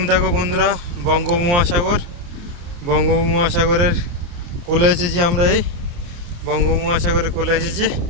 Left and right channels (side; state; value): left; late; 29 ms